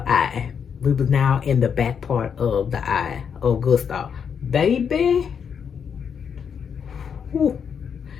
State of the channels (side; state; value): right; quieter; 7.1 dB